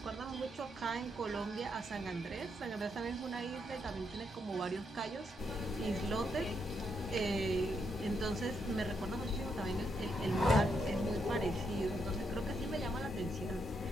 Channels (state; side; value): normal; both; correlation 0.79